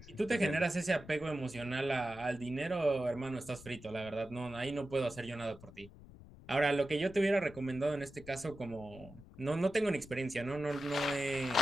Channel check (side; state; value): left; noise; rumble, 18 dB below the sound